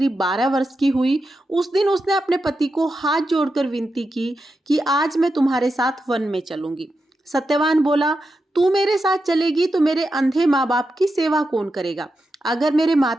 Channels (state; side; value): normal; both; correlation 0.88